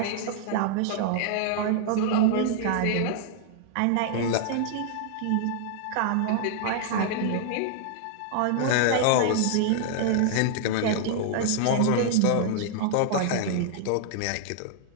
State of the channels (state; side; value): different; both; correlation -0.01